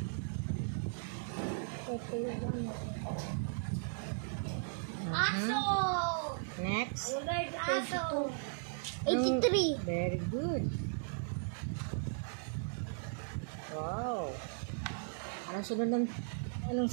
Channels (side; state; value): left; silent; digital silence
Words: Ito yung ano. Aso! Next. Aso! 83. Very good. Wow. Anong